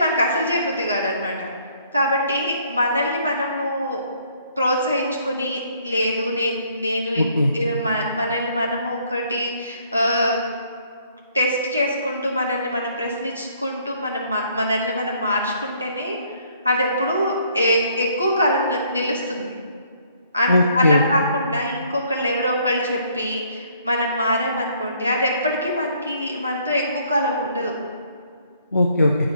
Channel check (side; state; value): both; inverted; correlation -0.64